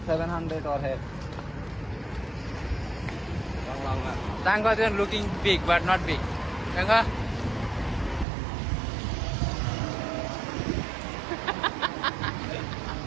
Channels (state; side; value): drops out; left; at 8.2 s